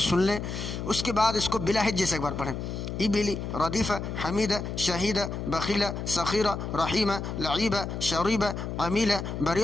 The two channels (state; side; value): noise; left; hum, 5 dB below the sound